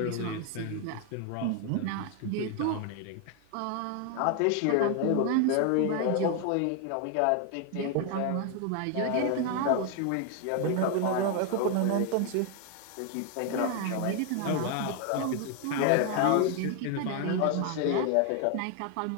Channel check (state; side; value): different; both; correlation 0.01